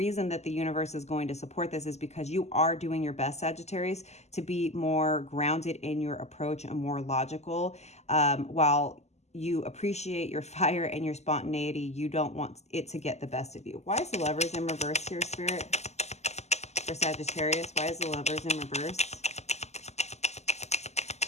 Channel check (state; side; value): late; right; 0.32 ms